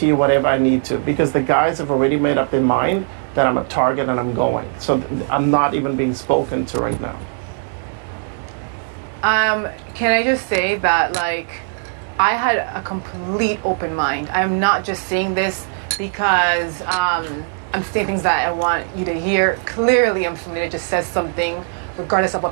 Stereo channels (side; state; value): left; silent; digital silence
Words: you whatever I need to. Because the guys have already made up their mind that I'm a target and I'm going. So I'm not even being spoken to right now. Can I just say that, like, I had a complete open mind. I'm not just saying this because I'm saying things that I want you to hear. Clearly, I'm somebody that just says something regardless of